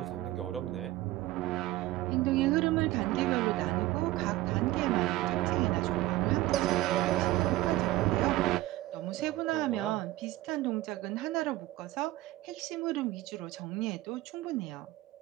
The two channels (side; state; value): left; quieter; 17.0 dB